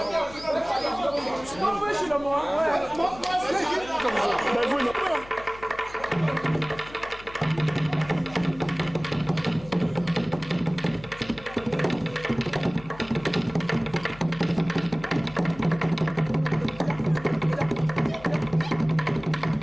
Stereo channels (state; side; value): noise; left; hum, 19 dB below the sound